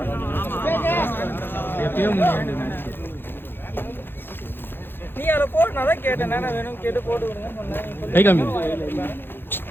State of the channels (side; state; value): right; late; 0.10 ms